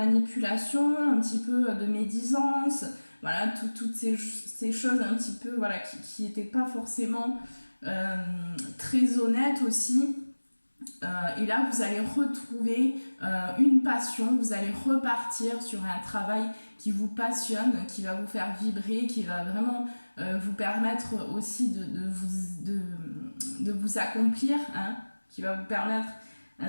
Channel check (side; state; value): both; inverted; correlation -1.00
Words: un petit peu de médisance, voilà, toutes ces choses un petit peu, voilà, qui n'étaient pas forcément très honnêtes aussi. Et là vous allez retrouver une passion, vous allez repartir sur un travail qui vous passionne, qui va vous faire vibrer, qui va vraiment vous permettre aussi de vous accomplir, hein, qui va vous permettre